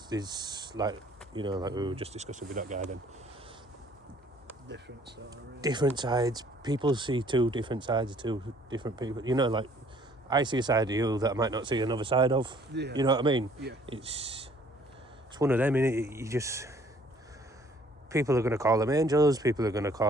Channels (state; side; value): normal; both; correlation 0.59